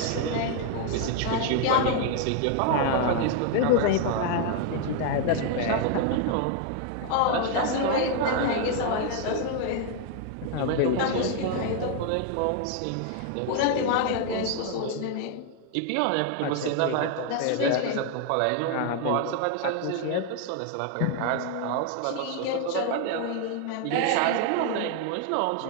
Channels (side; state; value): both; different; correlation 0.00